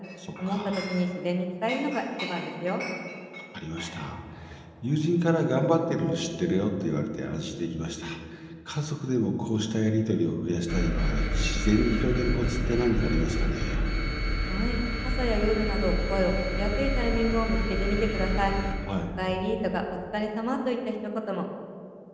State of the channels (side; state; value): both; identical; correlation 1.00